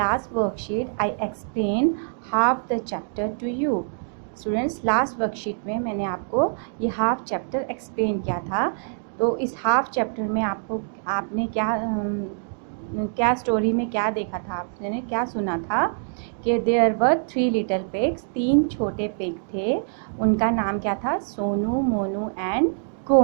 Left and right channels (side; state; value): left; silent; digital silence